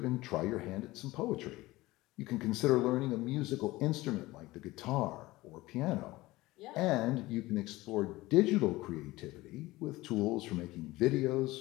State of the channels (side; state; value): right; quieter; 19.2 dB